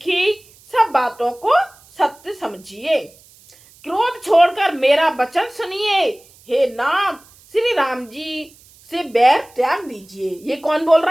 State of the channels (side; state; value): right; noise; hiss, 27 dB below the sound